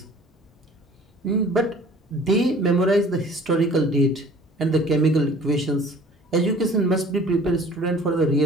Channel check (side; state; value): both; normal; correlation 0.50